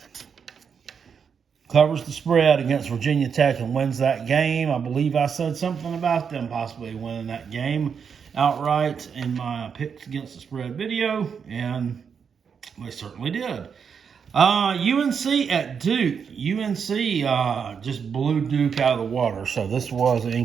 covers the spread against Virginia Tech and wins that game. I believe I said something about them possibly winning that game outright in my picks against the spread video, and they certainly did. UNC at Duke. UNC just blew Duke out of the water, so this was an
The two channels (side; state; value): left; quieter; 6.7 dB